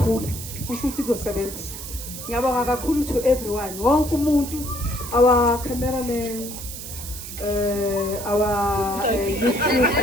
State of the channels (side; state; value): right; noise; hiss, 10 dB below the sound